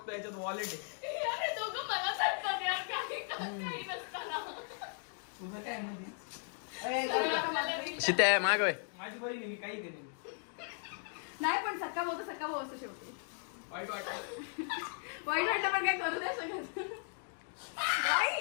याच्यात वॉलेट आहे. अरे दोघं मला सांगतात यार काही नसताना. तुझं काय म्हणजे शित्या माग वय. माझी बहीण आहे, मी काही केली नाही. नाही पण सक्का भाऊ तर सक्का भाऊ असतो शेवटी. वाईट वाटतं. वाईट वाटलं पण काय करू नाही शकत.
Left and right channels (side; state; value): right; silent; 53 dB below the other